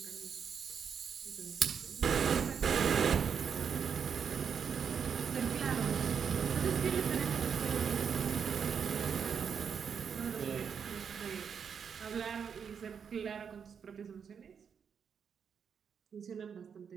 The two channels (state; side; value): quieter; left; 7.0 dB